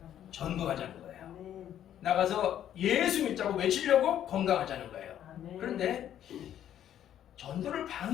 전도하자는 거예요. 아멘. 나가서 예수 믿자고 외치려고 건강하자는 거예요. 아멘. 그런데 전도를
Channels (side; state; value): right; quieter; 10.7 dB